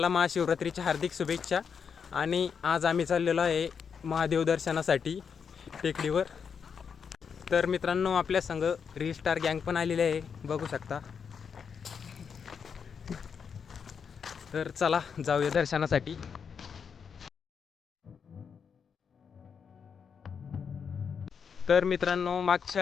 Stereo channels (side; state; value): right; quieter; 6.6 dB